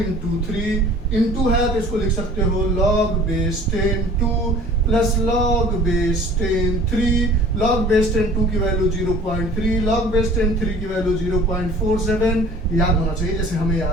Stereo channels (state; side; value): normal; both; correlation 0.48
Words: 3, इंटू है तो इसको लिख सकते हो log base 10 2 plus log base 10 3, log base 10 2 की वैल्यू 0.3, लॉग बेस 10 3 की वैल्यू 0.47, याद होना चाहिए जैसे हमें